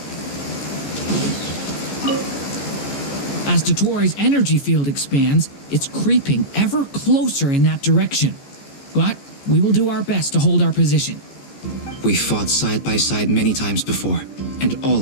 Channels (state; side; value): late; right; 14 ms